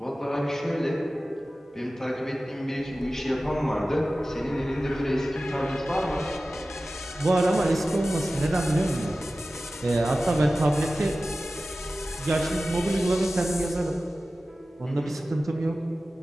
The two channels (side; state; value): both; normal; correlation 0.95